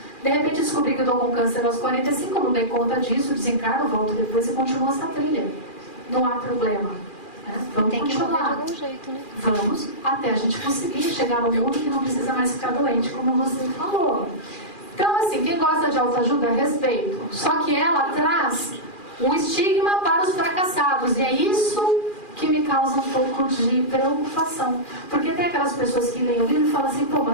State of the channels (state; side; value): late; right; 2.4 ms